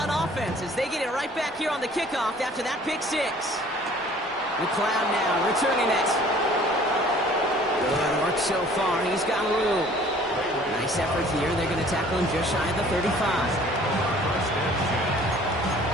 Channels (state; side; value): normal; both; correlation 0.53